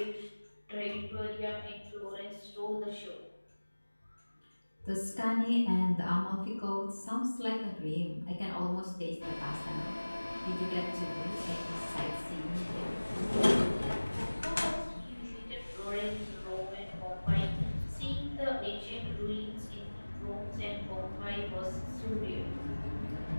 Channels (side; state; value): both; inverted; correlation -1.00